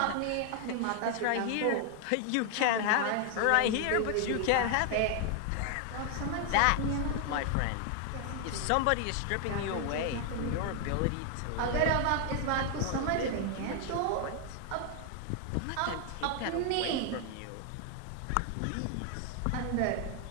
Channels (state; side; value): different; both; correlation 0.00